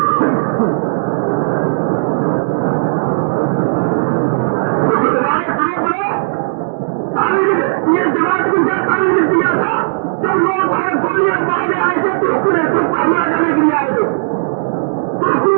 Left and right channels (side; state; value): left; silent; 67 dB below the other